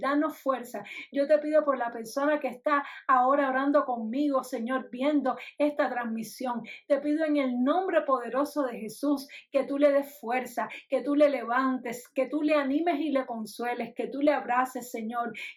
fuerza. Yo te pido por la persona que está ahora orando conmigo, Señor, viendo esta transmisión. Te pido en el nombre poderoso de Jesús que tú le des fuerza, que tú le levantes, que tú le animes y le consueles, que tú le abraces, Señor,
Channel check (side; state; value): both; identical; correlation 1.00